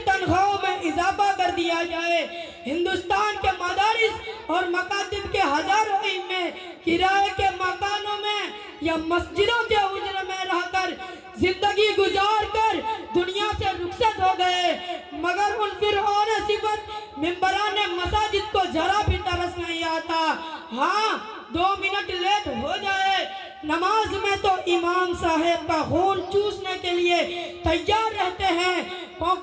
تنخواہوں میں اضافہ کر دیا جائے۔ ہندوستان کے مدارس اور مکاتب کے ہزاروں ائمہ کرائے کے مکانوں میں یا مسجدوں کے حجرے میں رہ کر زندگی گزار کر دنیا سے رخصت ہو گئے، مگر ان فرعون صفت ممبران مساجد کو ذرا بھی ترس نہیں آتا۔ ہاں 2 منٹ لیٹ ہو جائے نماز میں تو امام صاحب کا خون چوسنے کے لیے تیار رہتے ہیں،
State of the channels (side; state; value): both; identical; correlation 1.00